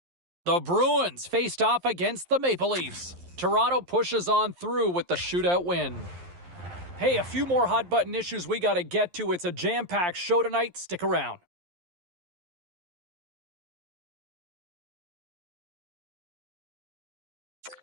The Bruins faced off against the Maple Leafs. Toronto pushes on through with the shootout win. Hey, a few more hot button issues we got to get to. It's a jam-packed show tonight. Stick around.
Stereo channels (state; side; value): late; left; 11 ms